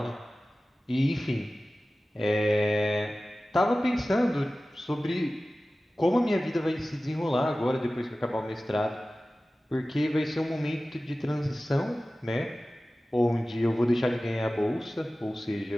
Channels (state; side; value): normal; both; correlation 0.96